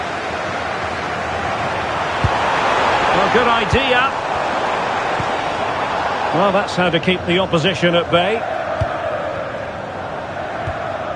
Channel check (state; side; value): identical; both; correlation 1.00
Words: Well, good idea. Well, that's how to keep the opposition at bay.